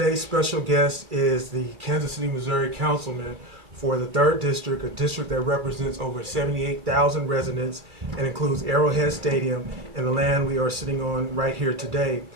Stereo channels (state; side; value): late; left; 2.4 ms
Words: special guest is the Kansas City, Missouri Councilman for the 3rd District, a district that represents over 78,000 residents and includes Arrowhead Stadium and the land we are sitting on right here today.